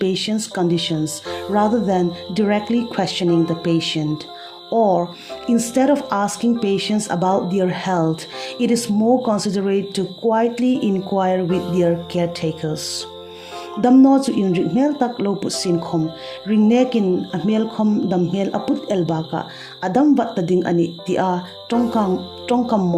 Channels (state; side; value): identical; both; correlation 1.00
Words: conditions rather than directly questioning the patient. Or, instead of asking patients about their health, it is more considerate to quietly inquire with their caretakers. Damno chu in ringmel tak lo put sin khom ringnekin amel khom damhel aput elbaka adam wat ding ani tia tongkam